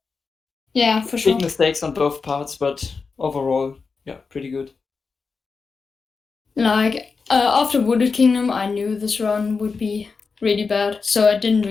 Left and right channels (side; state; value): right; quieter; 4.8 dB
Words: Yeah, for sure. Big mistakes on both parts, but overall, yeah, pretty good. Like, after Wooded Kingdom, I knew this run would be really bad, so I didn't